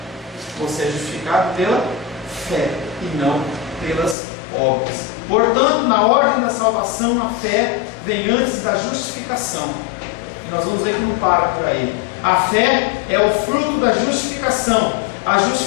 Você é justificado pela fé e não pelas obras. Portanto, na ordem da salvação, a fé vem antes da justificação. E nós vamos ver que não para por aí. A fé é o fruto da justificação. A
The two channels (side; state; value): right; drops out; at 4.2 s